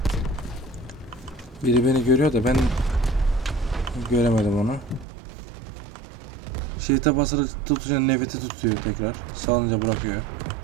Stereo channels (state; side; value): drops out; left; at 5.1 s